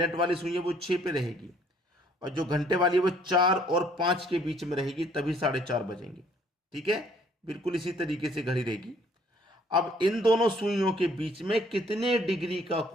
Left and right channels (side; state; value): both; normal; correlation 0.61